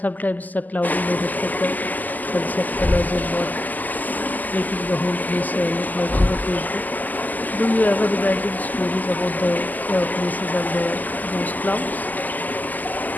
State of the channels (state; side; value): late; right; 0.083 ms